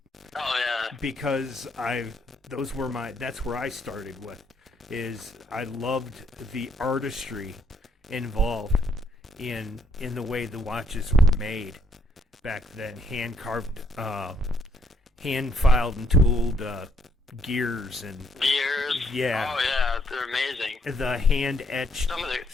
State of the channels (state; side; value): normal; both; correlation 0.71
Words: Because that's where I started with, is I loved the artistry involved in the way the watches were made back then. Hand carved, hand filed and tooled gears. Yeah. Oh yeah, they're amazing. The hand etched